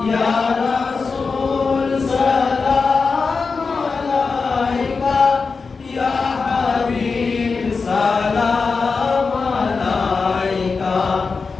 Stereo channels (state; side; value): quieter; right; 4.7 dB